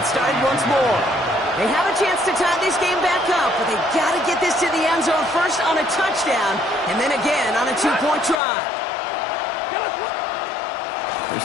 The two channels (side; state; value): right; drops out; at 8.4 s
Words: started once more. They have a chance to tie this game back up, but they got to get this to the end zone first on a touchdown, and then again on a 2-point try.